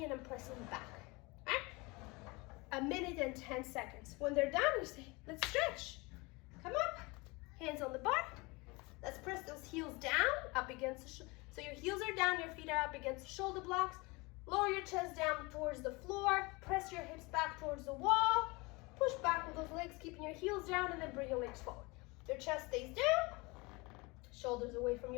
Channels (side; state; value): right; quieter; 25.5 dB